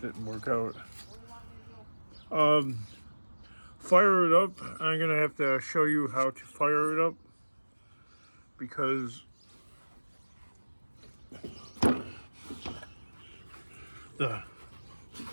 didn't work out. Fire it up. I'm gonna have to show you how to fire it up because the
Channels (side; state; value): both; inverted; correlation -1.00